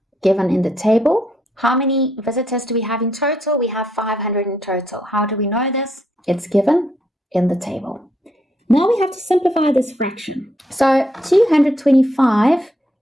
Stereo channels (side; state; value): both; normal; correlation 0.75